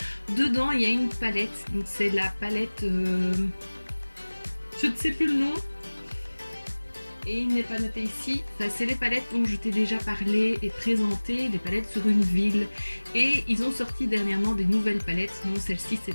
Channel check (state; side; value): inverted; both; correlation -1.00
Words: Dedans il y a une palette, donc c'est la palette, je ne sais plus le nom. Et il n'est pas noté ici, enfin, c'est les palettes dont je t'ai déjà parlé et présenté, les palettes sur une ville. Et ils ont sorti dernièrement des nouvelles palettes, non celle-ci